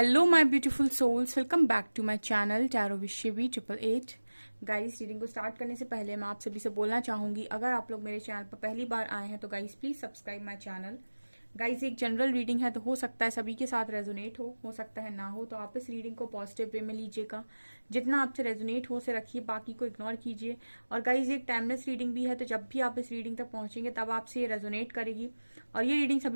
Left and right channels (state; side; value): inverted; both; correlation -1.00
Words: my beautiful souls, welcome back to my channel tarot Vishwi 888। Guys, reading को start करने से पहले मैं आप सभी से बोलना चाहूंगी, अगर आप लोग मेरे चैनल पर पहली बार आए हैं तो guys please subscribe my channel. Guys, एक जनरल रीडिंग है तो हो सकता है सभी के साथ रेजोनेट हो सकता है ना हो, तो आप इस रीडिंग को पॉजिटिव वे में लीजिएगा। जितना आपसे रेजोनेट हो उसे रखिए, बाकी को इग्नोर कीजिए। और गाइस, एक टाइमलेस रीडिंग भी है, तो जब भी आप इस रीडिंग तक पहुंचेंगे तब आपसे ये रेजोनेट करेगी। और ये रीडिंग